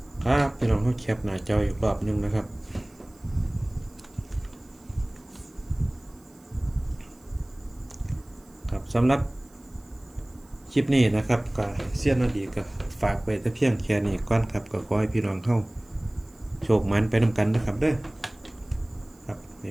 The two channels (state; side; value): noise; right; hiss, 29 dB below the sound